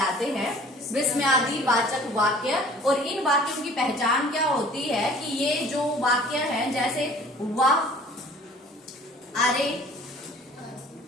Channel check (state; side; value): normal; both; correlation 0.50